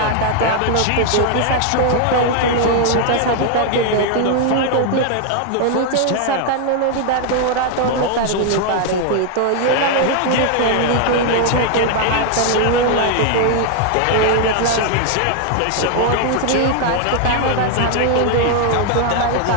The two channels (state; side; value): different; both; correlation 0.00